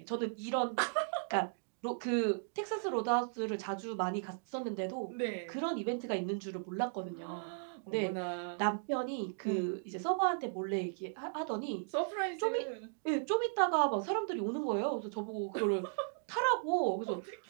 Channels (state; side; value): silent; left; digital silence